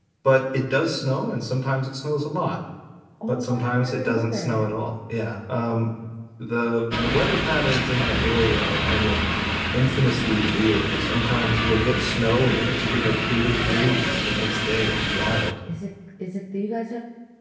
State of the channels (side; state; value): both; identical; correlation 1.00